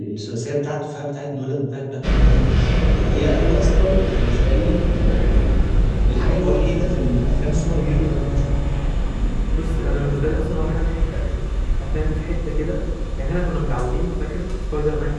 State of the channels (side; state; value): both; identical; correlation 1.00